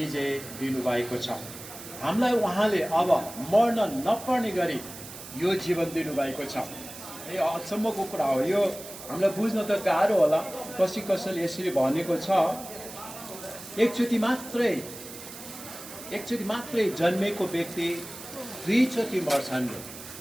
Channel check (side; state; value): right; noise; hiss, 13 dB below the sound